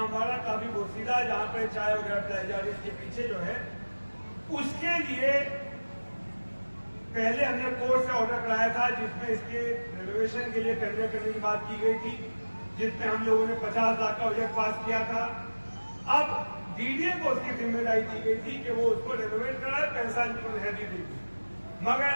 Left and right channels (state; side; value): inverted; both; correlation -1.00